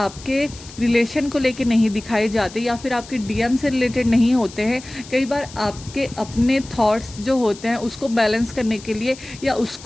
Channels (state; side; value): noise; left; hiss, 18 dB below the sound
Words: रिलेशन को लेके नहीं दिखाए जाते या फिर आपके डीएम से रिलेटेड नहीं होते हैं। कई बार आपके अपने थॉट्स जो होते हैं उसको बैलेंस करने के लिए या